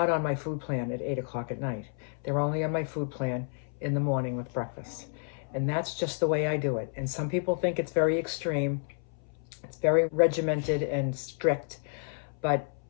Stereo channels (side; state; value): right; silent; 58 dB below the other